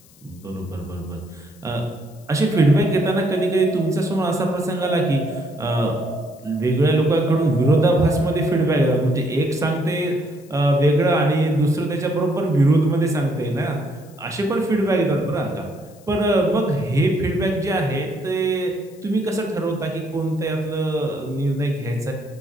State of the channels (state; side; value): noise; left; hiss, 27 dB below the sound